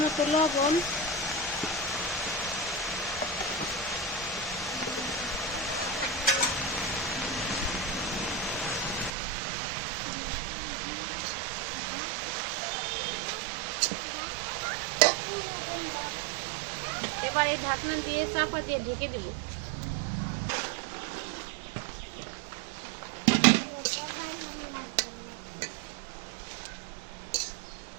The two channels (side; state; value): left; drops out; at 9.1 s